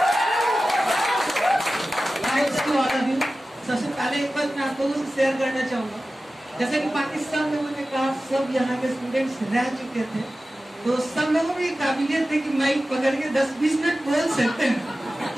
सबसे पहले एक बात मैं आप लोगों से शेयर करना चाहूंगा, जैसे कि पाकिस्तान में मैंने कहा सब यहाँ के स्टूडेंट्स रह चुके थे, तो सब लोगों में काबिलियत है कि माइक पकड़ के 10-20 मिनट बोल सकते हैं।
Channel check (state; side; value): normal; both; correlation 0.95